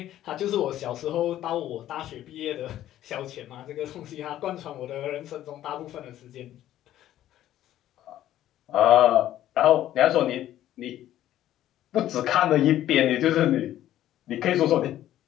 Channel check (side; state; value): right; quieter; 12.8 dB